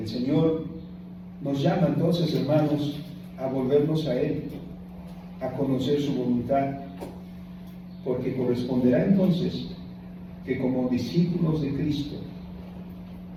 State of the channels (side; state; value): both; identical; correlation 1.00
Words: Señor nos llama entonces, hermanos, a volvernos a Él, a conocer su voluntad, porque corresponderá entonces que como discípulos de Cristo,